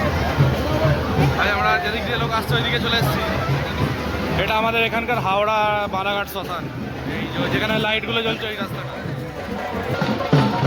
ভাই আমরা যেদিক দিয়ে লোক আসছে ওইদিকে চলে এসেছি। এটা আমাদের এখানকার হাওড়া বারাঘাট শ্মশান, এই যেখানে লাইটগুলো জ্বলছে ওই রাস্তাটা।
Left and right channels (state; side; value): identical; both; correlation 1.00